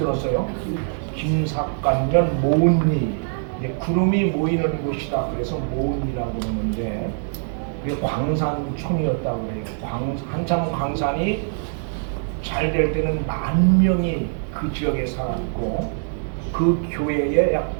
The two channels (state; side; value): silent; left; digital silence